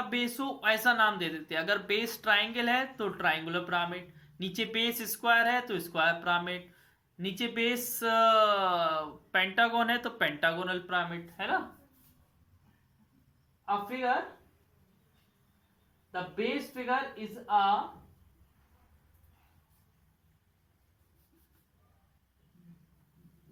बेस हो ऐसा नाम दे देते हैं। अगर बेस ट्राइंगल है तो ट्राइंगुलर पिरामिड, नीचे बेस स्क्वायर है तो स्क्वायर पिरामिड, नीचे बेस पेंटागन है तो पेंटागोनल पिरामिड, है ना। A figure, the base figure is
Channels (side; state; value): both; identical; correlation 1.00